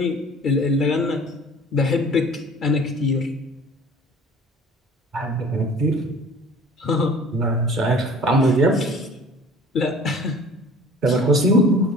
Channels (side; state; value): both; normal; correlation 0.46